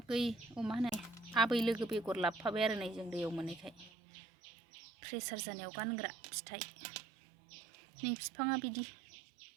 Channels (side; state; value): left; drops out; at 3.9 s